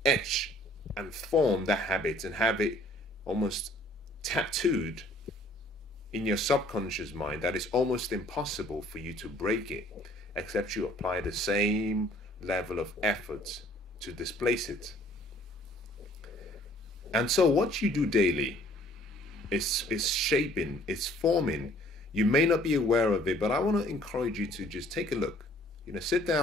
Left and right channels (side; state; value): both; normal; correlation 0.57